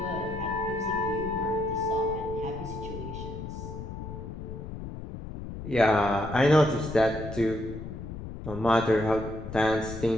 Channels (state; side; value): noise; left; rumble, 9 dB below the sound